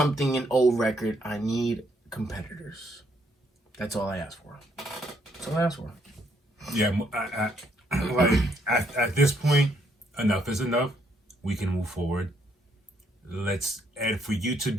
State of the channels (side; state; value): both; normal; correlation 0.72